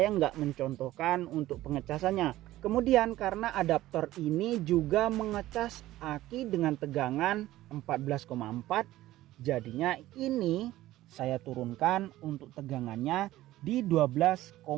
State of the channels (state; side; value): quieter; left; 15.7 dB